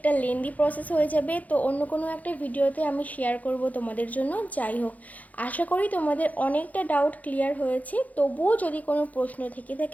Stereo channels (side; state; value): right; late; 0.076 ms